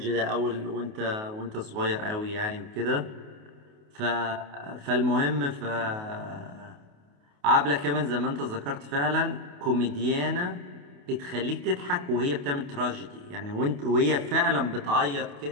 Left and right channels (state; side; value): late; left; 28 ms